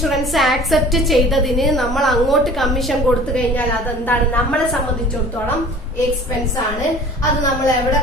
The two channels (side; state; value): both; normal; correlation 0.46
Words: ആക്സെപ്റ്റ് ചെയ്തതിന് നമ്മൾ അങ്ങോട്ട് കമ്മീഷൻ കൊടുത്തു കഴിഞ്ഞാൽ അതെന്താണ്, നമ്മളെ സംബന്ധിച്ചിടത്തോളം എക്സ്പെൻസ് ആണ്. അത് നമ്മൾ എവിടെ